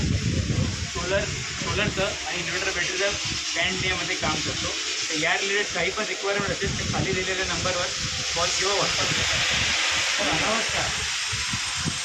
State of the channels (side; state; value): both; identical; correlation 1.00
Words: सोलरचं आणि इन्व्हर्टर बॅटरीचं पॅन इंडियामध्ये काम करतो. तर या रिलेटेड काही पण रिक्वायरमेंट असेल तर खाली दिलेल्या नंबरवर कॉल किंवा व्हॉट्सअप करा. तर नमस्कार.